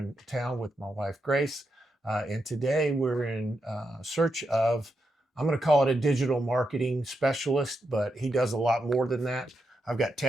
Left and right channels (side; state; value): both; normal; correlation 0.84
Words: town with my wife, Grace. And today we're in search of, I'm going to call it a digital marketing specialist, but he does a lot more than that. I've got